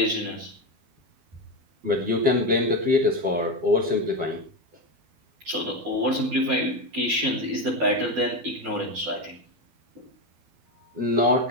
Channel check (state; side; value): late; left; 12 ms